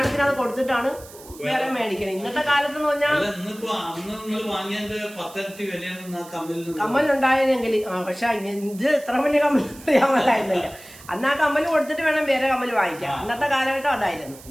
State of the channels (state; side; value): noise; right; hiss, 20 dB below the sound